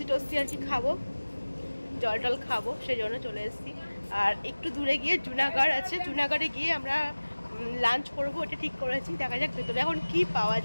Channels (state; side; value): inverted; both; correlation -1.00